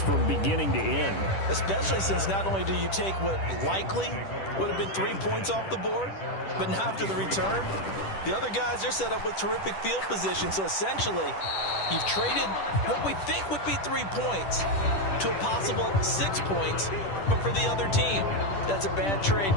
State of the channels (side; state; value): right; late; 10 ms